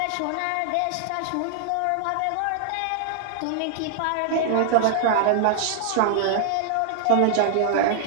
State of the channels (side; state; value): both; different; correlation -0.01